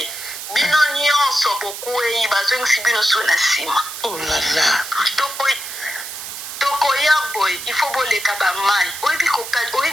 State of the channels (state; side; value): noise; right; hiss, 9 dB below the sound